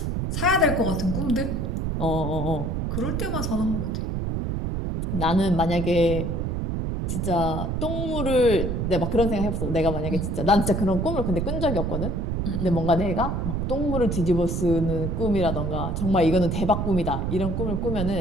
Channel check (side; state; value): right; noise; rumble, 1 dB below the sound